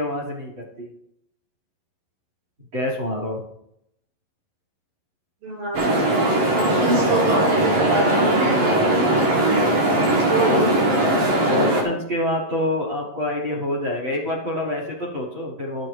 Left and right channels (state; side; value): late; left; 11 ms